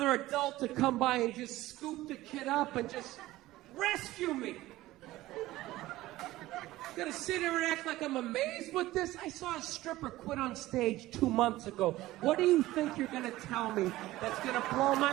adult to come by and just scoop the kid up and just rescue me. Gotta sit here and act like I'm amazed with this. I saw a stripper quit on stage 2 months ago. What do you think you're gonna tell me that's gonna blow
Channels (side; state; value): left; quieter; 16.8 dB